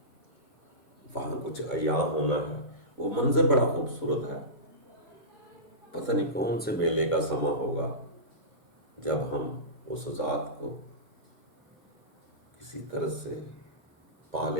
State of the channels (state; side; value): normal; both; correlation -0.19